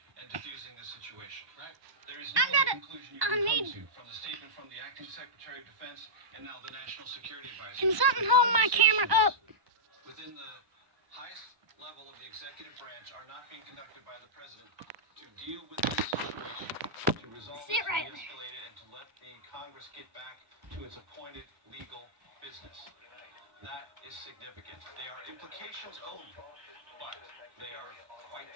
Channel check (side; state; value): left; late; 1.1 ms